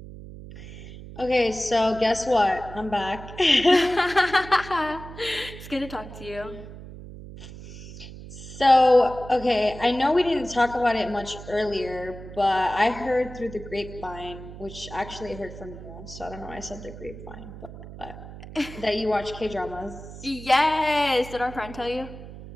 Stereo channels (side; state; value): right; noise; hum, 14 dB below the sound